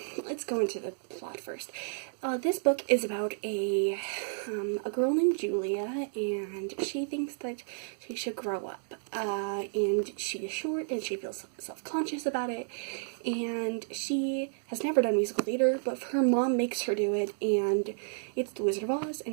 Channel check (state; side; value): silent; left; digital silence